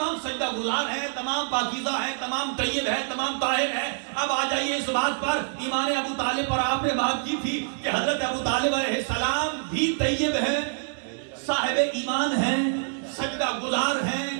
سجدہ گزار ہیں، تمام پاکیزہ ہیں، تمام طیب ہیں، تمام طاہر ہیں. اب آ جائیے اس بات پر، ایمان ابو طالب پر آپ نے بات کی تھی کہ حضرت ابو طالب علیہ السلام بھی طیب ہیں، صاحب ایمان ہیں، سجدہ گزار ہیں،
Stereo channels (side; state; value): left; silent; digital silence